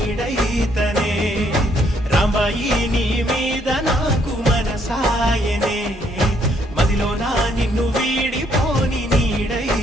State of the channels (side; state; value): both; normal; correlation 0.69